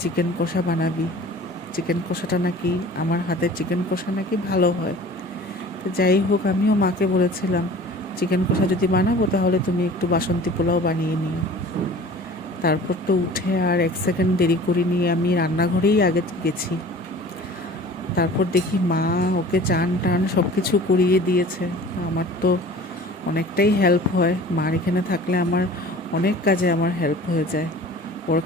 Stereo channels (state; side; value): normal; both; correlation 0.44